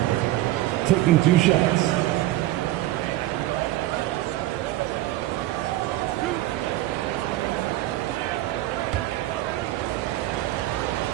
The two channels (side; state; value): left; quieter; 15.7 dB